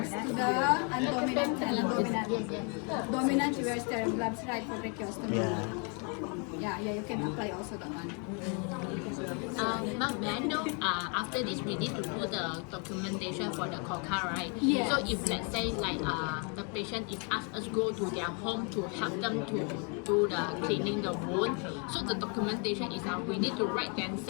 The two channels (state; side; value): quieter; right; 36.4 dB